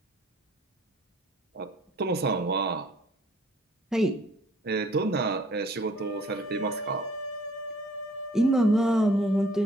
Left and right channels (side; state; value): both; normal; correlation 0.57